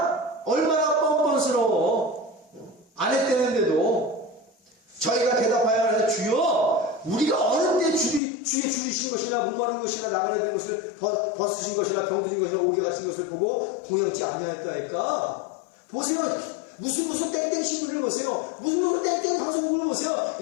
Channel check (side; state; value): right; drops out; at 8.2 s